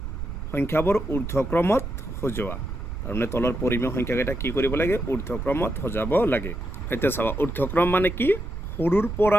সংখ্যাবোৰ ঊৰ্ধ্বক্ৰমত সজোৱা তাৰমানে তলৰ পৰিমেয় সংখ্যাকেইটা কি কৰিব লাগে ঊৰ্ধ্বক্ৰমত সজাব লাগে এতিয়া চাবা ঊৰ্ধ্বক্ৰম মানে কি সৰুৰ পৰা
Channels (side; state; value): right; noise; rumble, 7 dB below the sound